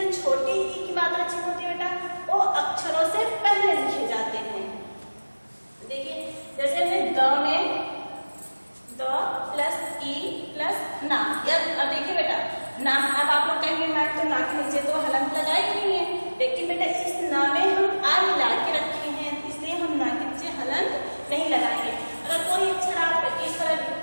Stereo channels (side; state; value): both; inverted; correlation -1.00